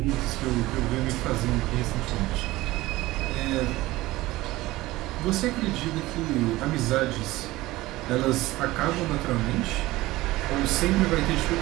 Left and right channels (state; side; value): quieter; left; 18.4 dB